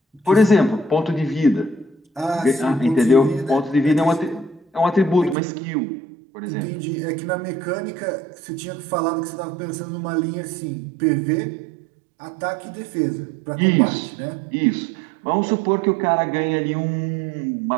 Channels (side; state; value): left; drops out; at 5.4 s